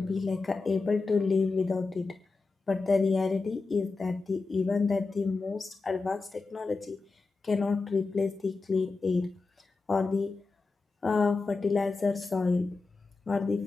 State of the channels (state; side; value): quieter; right; 3.9 dB